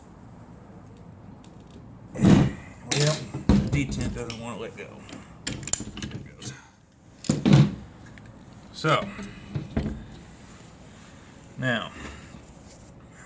Well, the detent doesn't want to let go. There it goes. So, now,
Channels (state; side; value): identical; both; correlation 1.00